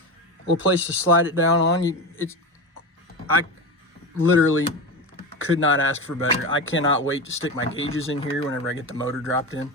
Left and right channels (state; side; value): normal; both; correlation 0.22